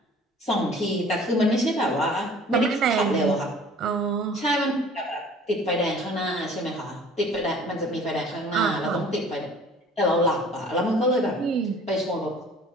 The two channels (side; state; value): both; normal; correlation 0.49